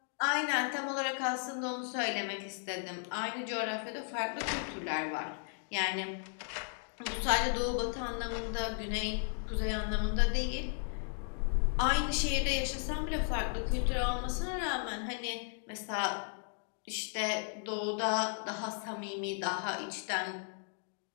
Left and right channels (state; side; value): silent; right; 54 dB below the other